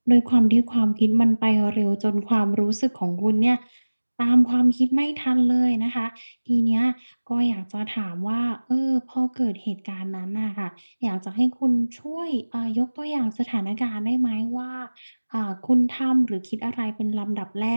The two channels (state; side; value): inverted; both; correlation -1.00